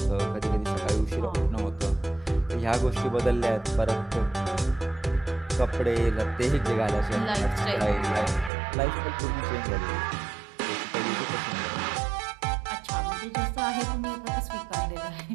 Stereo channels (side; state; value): left; drops out; at 8.5 s